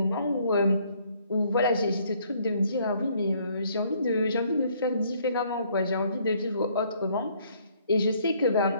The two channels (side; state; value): both; inverted; correlation -0.65